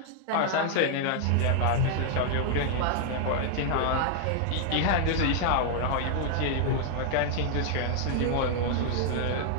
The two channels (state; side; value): different; both; correlation 0.00